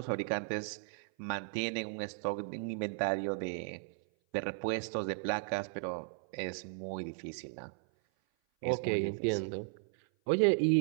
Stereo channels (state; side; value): silent; left; 54 dB below the other